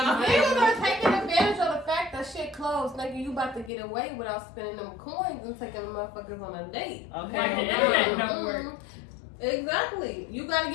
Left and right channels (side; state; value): right; drops out; at 3.7 s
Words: niggas are taking advantage of the fact that shit closed. Nigga, you about to get away without spending them coins and taking the motherfuckers on a date. Like the internet don't work. Exactly. You gotta